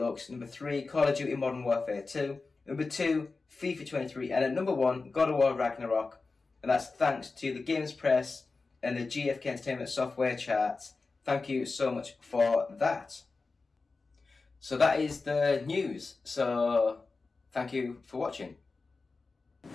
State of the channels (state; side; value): quieter; right; 4.0 dB